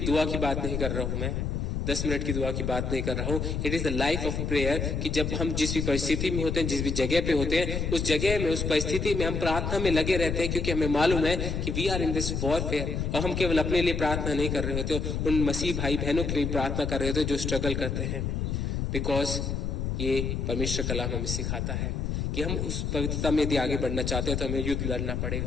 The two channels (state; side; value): noise; left; rumble, 1 dB below the sound